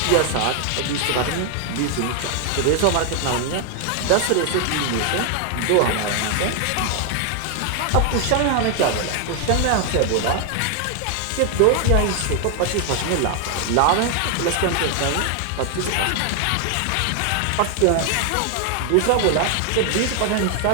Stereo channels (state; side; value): different; both; correlation 0.00